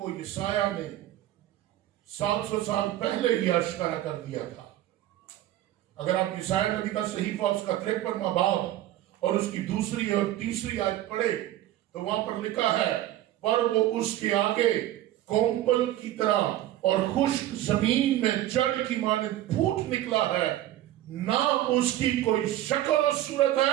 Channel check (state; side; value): quieter; left; 13.8 dB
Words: यशायाह ने 700 साल पहले ही आश्कारा कर दिया था। अगर आप यशायाह नबी का सहीफा उसका 53वां बाब और उसकी दूसरी और तीसरी आयत पढ़े तो वहां पर लिखा है, पर वो उसके आगे कोम्पल की तरह और खुश्क जमीन में जड़ की मानिंद फूट निकला है। ना उसकी कोई शक्ल और सूरत